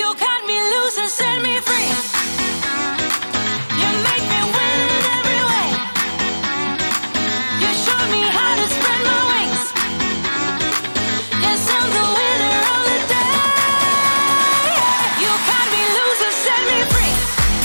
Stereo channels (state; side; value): inverted; both; correlation -1.00